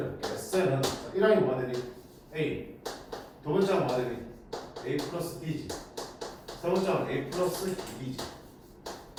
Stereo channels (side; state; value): both; identical; correlation 1.00